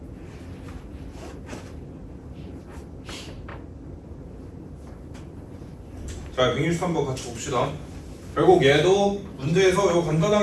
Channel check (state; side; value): identical; both; correlation 1.00